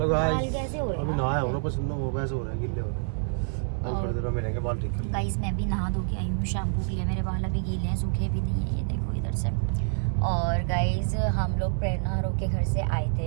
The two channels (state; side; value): silent; left; digital silence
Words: गाइस, कैसे हो रहे अभी नहाया हूँ ना, पसंद वो वैसे हो रहा है, गिल्ले हो रहे हैं. अब थोड़ी देर में मिलेंगे बाल ठीक. गाइस मैं भी नहा धो के आई हूँ शैम्पू के लिए. मेरे बाल अभी गीले हैं, सूखे भी नहीं है. ये देखो इधर से. और गाइज हम लोग प्रेरणा हरो के घर से आए